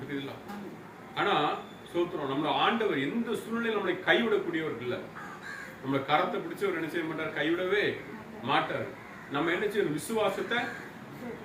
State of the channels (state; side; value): identical; both; correlation 1.00